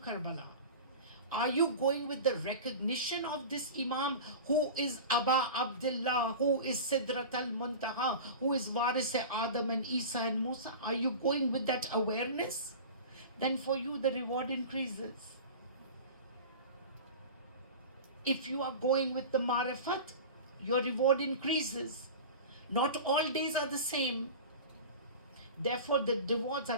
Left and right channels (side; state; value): both; inverted; correlation -0.33